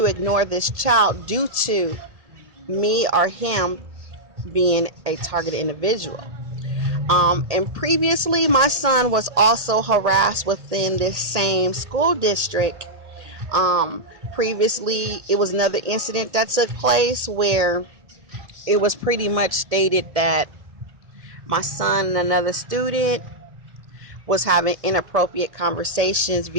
ignore this child due to me or him being a targeted individual. And previously, my son was also harassed within this same school district. Previously, it was another incident that took place where it was pretty much stated that my son and another student was having inappropriate conversations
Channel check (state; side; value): late; left; 1.8 ms